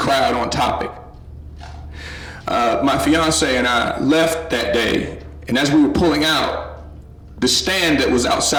on topic. My fiance and I left that day, and as we were pulling out, the stand that was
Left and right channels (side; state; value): both; identical; correlation 1.00